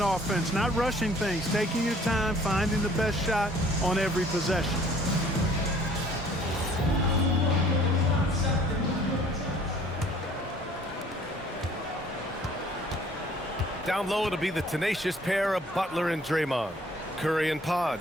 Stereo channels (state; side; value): normal; both; correlation 0.56